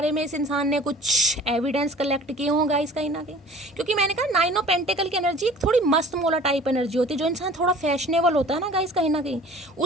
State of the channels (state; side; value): normal; both; correlation 0.47